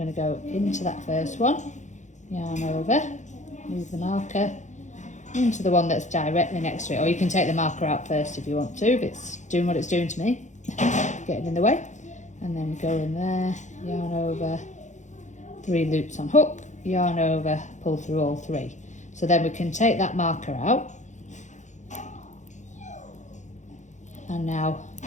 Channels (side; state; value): right; late; 0.35 ms